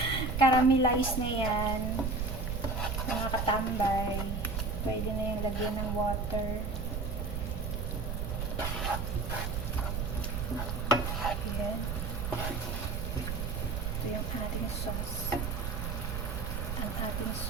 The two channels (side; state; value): right; noise; rumble, 2 dB below the sound